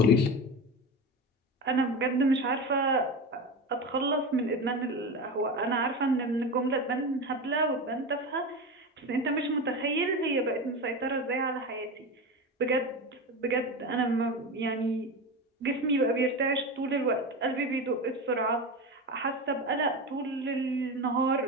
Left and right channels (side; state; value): both; normal; correlation 0.23